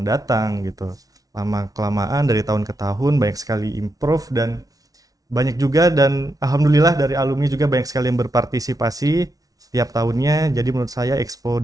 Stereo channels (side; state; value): left; late; 0.18 ms